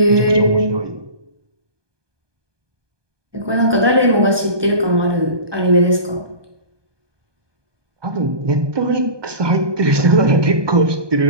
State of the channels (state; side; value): late; left; 1.2 ms